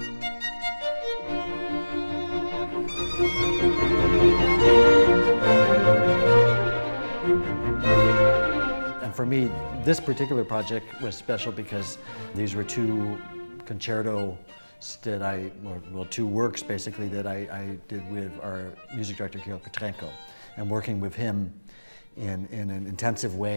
And for me, this particular project was special because these were two concertos that two works basically that I did with our music director, Georg Petrenko, and working with him in an intensive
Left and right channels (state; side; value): inverted; both; correlation -1.00